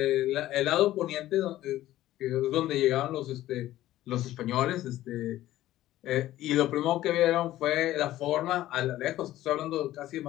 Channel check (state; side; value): quieter; right; 14.6 dB